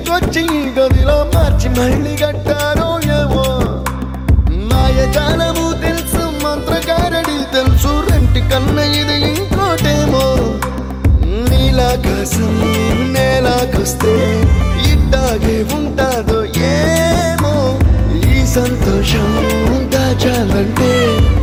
తీసుకొచ్చి గదిలో మార్చి మళ్ళీ కట్టారో ఏమో మాయజాలము తెలుసు మంత్రగారడి తెలుసు రెంటి కన్న ఇది ఇంకోటేమో నీలాకాశం నేలాకొస్తే ఇట్టాగే ఉంటాదో ఏమో ఈ సంతోషం దాచాలంటే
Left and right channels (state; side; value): identical; both; correlation 1.00